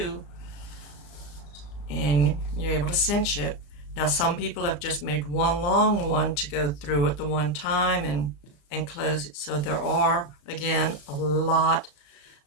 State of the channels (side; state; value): right; late; 34 ms